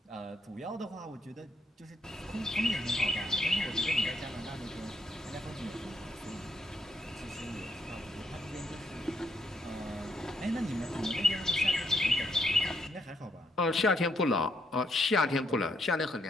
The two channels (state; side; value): normal; both; correlation 0.74